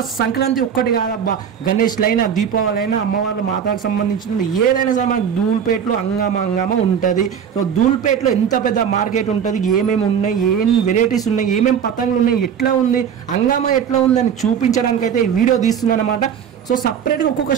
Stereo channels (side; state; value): left; quieter; 8.0 dB